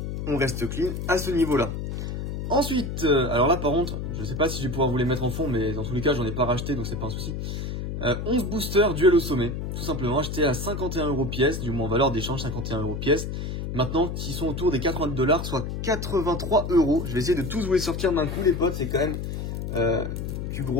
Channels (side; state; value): left; noise; hum, 4 dB below the sound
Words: On reste clean à ce niveau-là. Ensuite, alors là par contre, je sais pas si je vais pouvoir vous les mettre en fond, mais dans tous les cas j'en ai pas racheté, donc c'est pas un souci. 11 boosters duel au sommet, tout simplement achetés à 51 € pièce, du moins en valeur d'échange 51 € pièce. Maintenant, qui sont autour des 80 $, soit 83 €. Je vais essayer de tous vous les sortir d'un coup, les potes. C'est quand même du